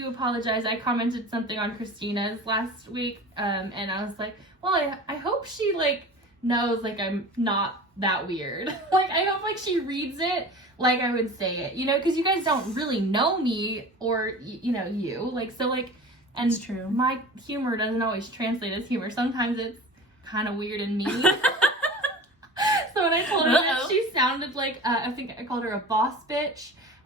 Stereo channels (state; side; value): normal; both; correlation 0.37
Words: apologize. I commented something on Christina's last week, and I was like, well, I hope she, like, knows, like, I'm not that weird. Like, I hope, like, she reads it like I would say it, you know, because you guys don't really know me or, you know, you. Like, so, like, and it's true. My humor doesn't always translate as humor. Sometimes it's kind of weird and mean. So when I told her that she sounded like, I think I called her a boss bitch.